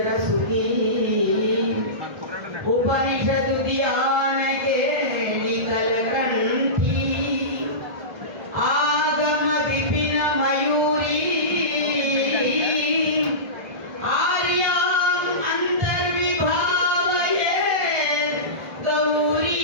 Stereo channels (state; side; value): late; left; 1.6 ms